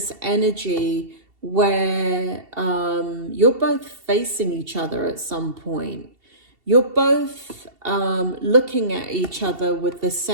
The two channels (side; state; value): left; late; 2.7 ms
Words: energy where you're both facing each other at some point. You're both looking at each other with the